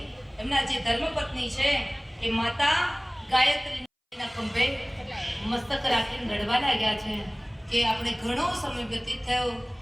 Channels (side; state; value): both; identical; correlation 1.00